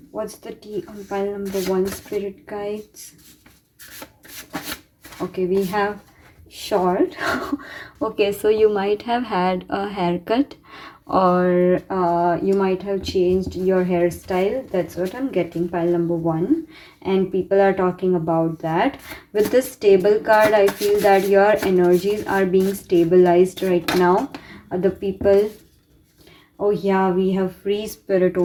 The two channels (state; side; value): identical; both; correlation 1.00